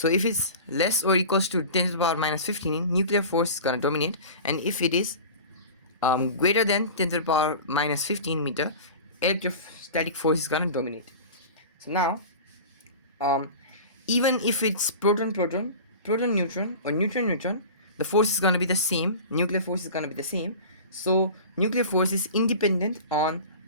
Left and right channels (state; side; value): inverted; both; correlation -0.35